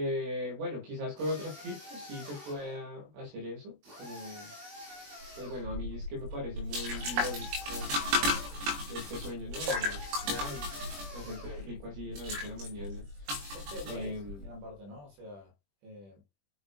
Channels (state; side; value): late; left; 20 ms